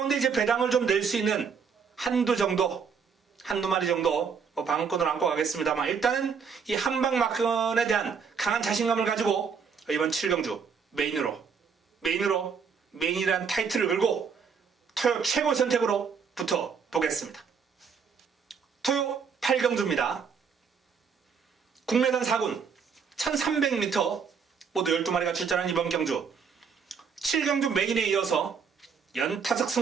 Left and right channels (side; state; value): left; quieter; 6.1 dB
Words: 이제 배당을 좀 낼 수 있는 한두 마리 정도 방어권을 안고 가겠습니다만, 일단은 이 한방 막권에 대한 강한 자신감을 가지고 이번 7경주 메인이란 타이틀을 걸고 토요 최고 선택으로 붙어 보겠습니다. 토요 8경주입니다. 국내산 4군 1300m 모두 12마리가 출전한 이번 경주 7경주 메인에 이어서 연타석